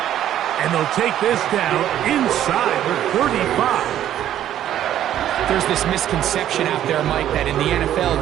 And they'll take this down inside the 35. There's this misconception out there, Mike, that in the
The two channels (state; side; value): quieter; left; 11.5 dB